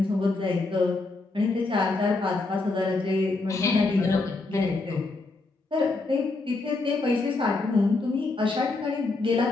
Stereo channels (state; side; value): quieter; right; 3.4 dB